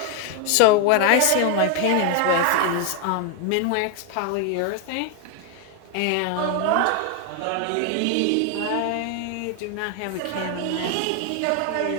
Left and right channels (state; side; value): different; both; correlation 0.01